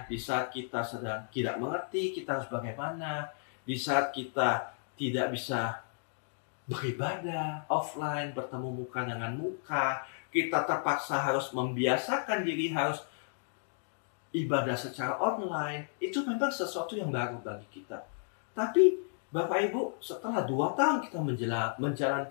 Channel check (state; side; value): silent; right; digital silence